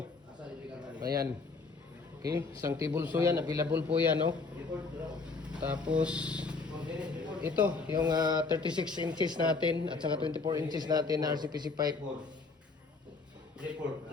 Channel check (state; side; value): quieter; right; 4.1 dB